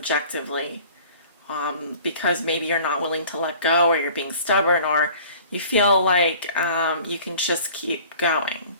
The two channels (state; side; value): inverted; both; correlation -0.48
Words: because maybe you're not willing to let go, or you're being stubborn, or you feel like you can just keep going.